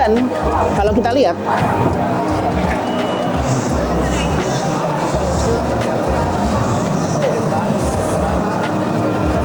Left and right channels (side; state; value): both; identical; correlation 1.00